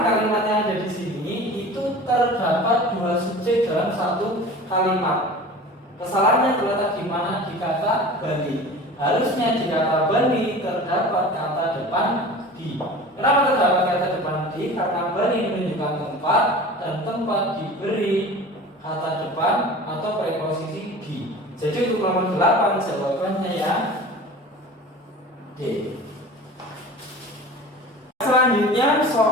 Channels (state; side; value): normal; both; correlation 0.38